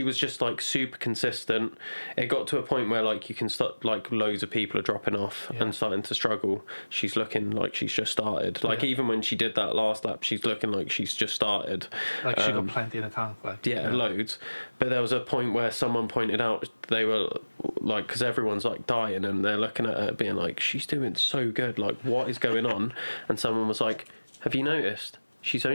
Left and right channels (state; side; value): inverted; both; correlation -1.00